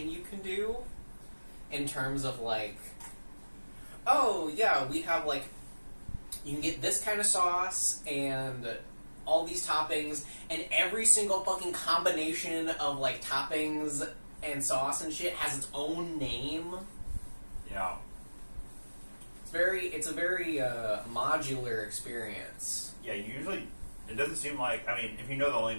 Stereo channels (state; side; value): inverted; both; correlation -1.00